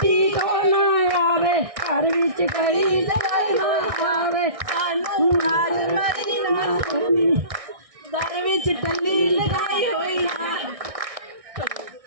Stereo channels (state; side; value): late; left; 1.6 ms